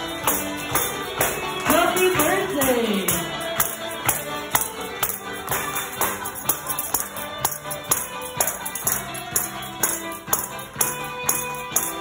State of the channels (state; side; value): identical; both; correlation 1.00